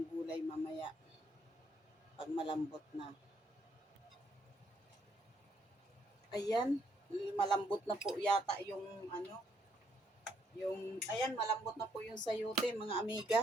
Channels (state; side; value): normal; both; correlation 0.72